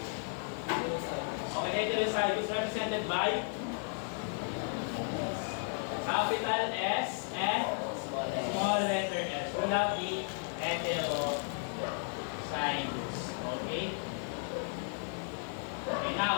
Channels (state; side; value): silent; right; 55 dB below the other